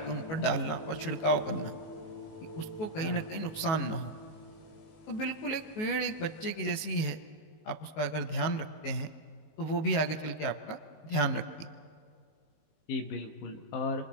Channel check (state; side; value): late; right; 19 ms